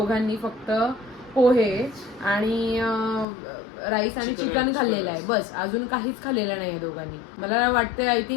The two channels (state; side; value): drops out; right; at 3.2 s